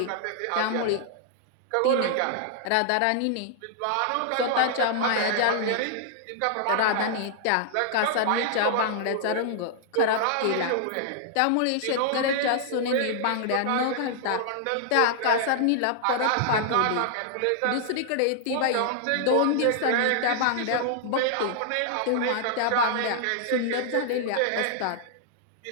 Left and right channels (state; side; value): different; both; correlation -0.01